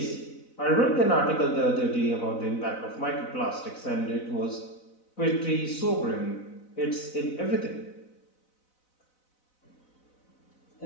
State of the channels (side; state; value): right; late; 4.0 ms